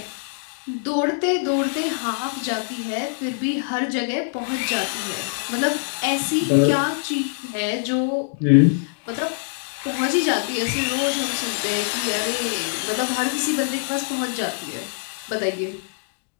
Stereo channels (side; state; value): right; silent; digital silence